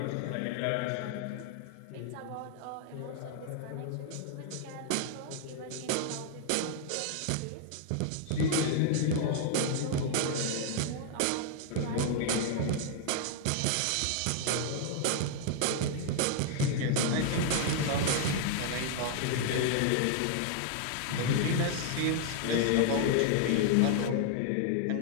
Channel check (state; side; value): different; both; correlation 0.00